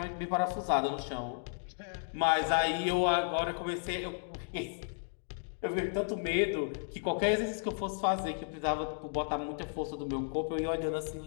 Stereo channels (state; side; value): silent; right; digital silence